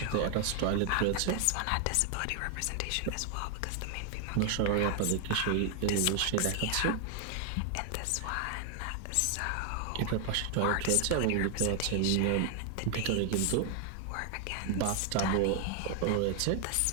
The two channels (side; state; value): both; different; correlation 0.00